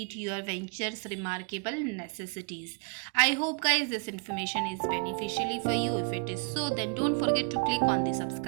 your venture's remarkable necessities. I hope guys this information is beneficially for you. If it is so, then don't forget to click on the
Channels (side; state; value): left; quieter; 35.8 dB